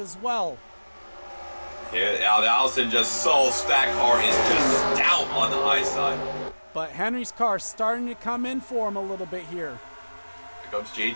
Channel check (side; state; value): both; inverted; correlation -1.00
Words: well. Yeah, Allison just that car is just stout on the high side. But Henry's car starting to come in for him a little bit here. Here comes